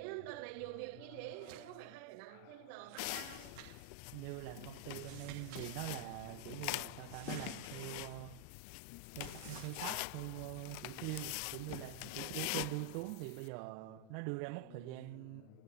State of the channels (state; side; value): different; both; correlation 0.00